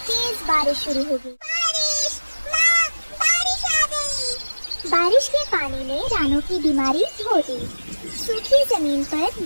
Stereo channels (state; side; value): inverted; both; correlation -1.00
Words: तेज बारिश शुरू हो गई। बारिश, माँ, बारिश आ गई। बारिश के पानी ने रानो की बीमारी धो दी। सूखी जमीन पर